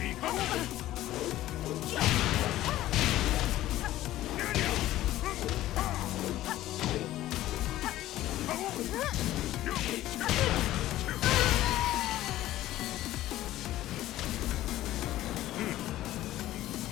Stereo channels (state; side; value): quieter; right; 14.8 dB